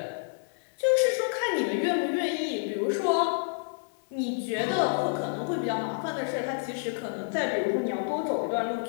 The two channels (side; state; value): right; silent; digital silence